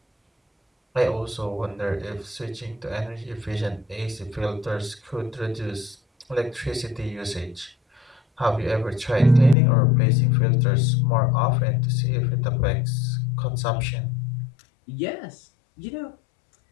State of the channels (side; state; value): right; drops out; at 9.6 s